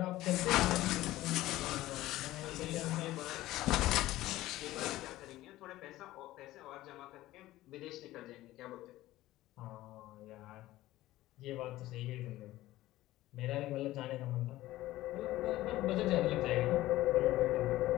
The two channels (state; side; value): quieter; right; 16.2 dB